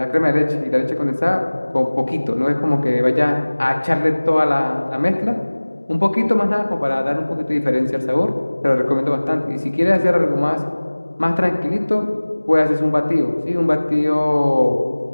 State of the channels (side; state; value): both; inverted; correlation -1.00